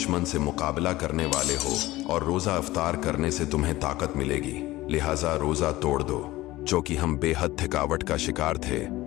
से मुकाबला करने वाले हो और रोजा इफ्तार करने से तुम्हें ताकत मिलेगी, लिहाजा रोजा तोड़ दो। जो कि हम बेहद थकावट का शिकार थे,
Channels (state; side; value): quieter; right; 17.9 dB